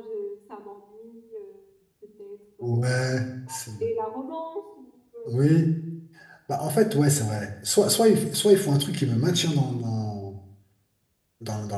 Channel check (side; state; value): both; identical; correlation 1.00